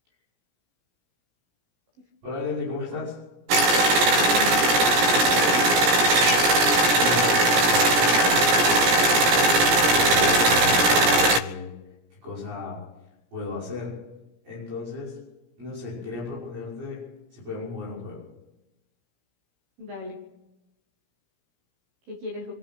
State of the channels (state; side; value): late; left; 17 ms